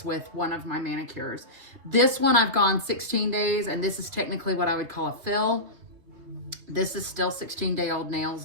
with one of my manicures. This one I've gone 16 days, and this is technically what I would call a fill. This is still 16-day-old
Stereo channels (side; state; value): left; late; 3.0 ms